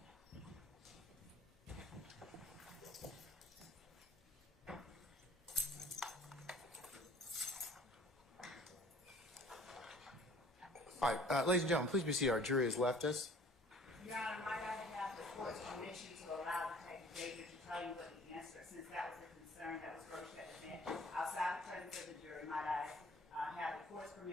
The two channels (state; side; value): normal; both; correlation 0.51